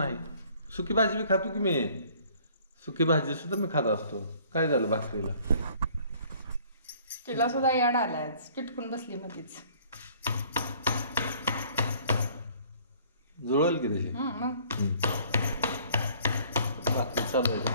सुकी भाजी बी खातो की मी. सुकी भाजी सुद्धा मी खात असतो. काय झालं भाकरीला? तिला सुद्धा याड आलाय, चिटकून बसली मध्येच. जुळल की तशी मग भाकरी चालू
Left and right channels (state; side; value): inverted; both; correlation -0.56